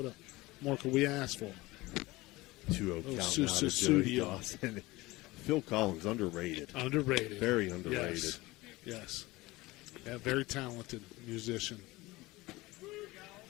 more could we ask for? 2-0 count now to Joey Dawson. Phil Collins, underrated. Underrated. Very underrated. Yes. Yeah, very talented musician.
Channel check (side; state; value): right; quieter; 20.5 dB